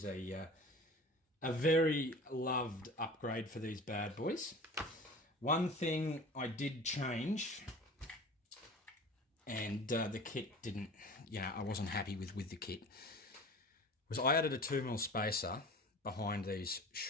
a very loved upgrade for these bad boys. One thing I did change, and the kit didn't, I wasn't happy with the kit, was I added a 2mm spacer behind these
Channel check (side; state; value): both; normal; correlation 0.39